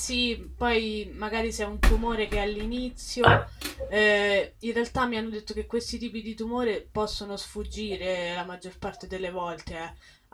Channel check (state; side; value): identical; both; correlation 1.00